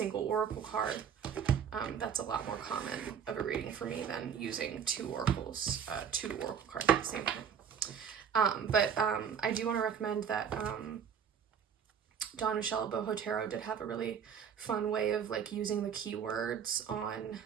oracle card. That's a lot more common of a reading for me than using 2 oracle cards at the same time. But I do want to recommend that Don Michelle Boho Tarot did have a really fun way of like using the keywords on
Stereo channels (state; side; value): quieter; left; 7.6 dB